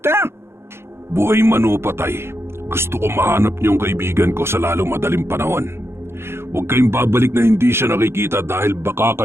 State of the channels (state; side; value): late; left; 0.12 ms